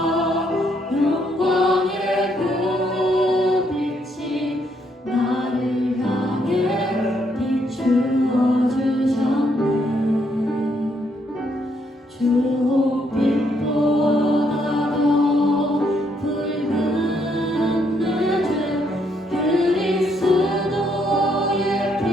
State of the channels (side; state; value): both; normal; correlation 0.73